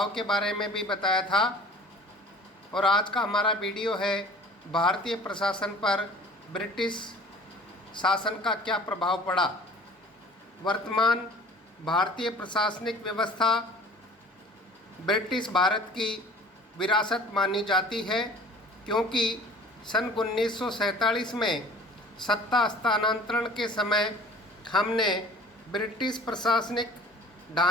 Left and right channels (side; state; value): both; normal; correlation 0.47